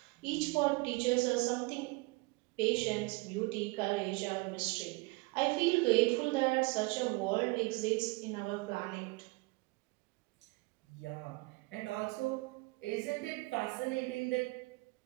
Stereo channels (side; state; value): left; quieter; 25.2 dB